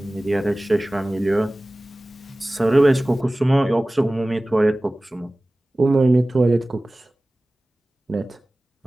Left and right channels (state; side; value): normal; both; correlation 0.98